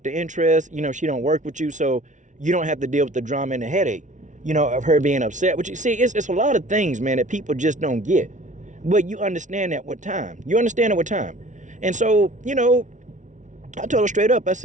of interest. You know, she don't work with you, so you don't have to deal with the drama and the headache, you know, of her being upset with you. See, it's a lot of things, man, that people just don't get. But you understand that with time. And so, you know, I told her straight up, I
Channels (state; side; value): late; left; 0.36 ms